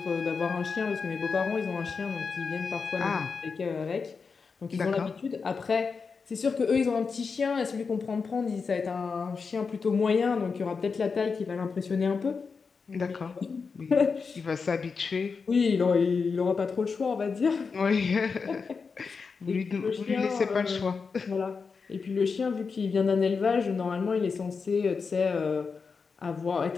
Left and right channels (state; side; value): quieter; right; 5.1 dB